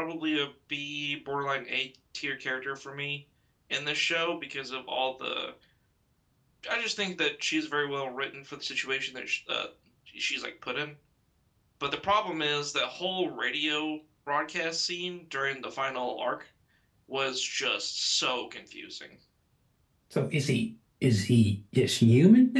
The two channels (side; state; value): both; identical; correlation 1.00